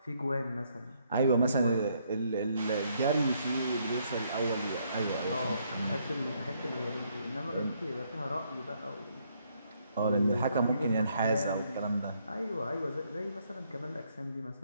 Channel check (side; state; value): both; inverted; correlation -0.71